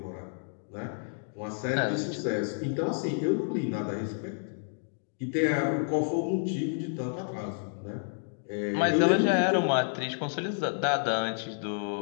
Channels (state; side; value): silent; right; digital silence